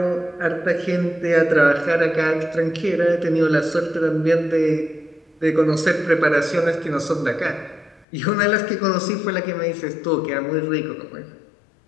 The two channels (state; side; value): drops out; right; at 8.1 s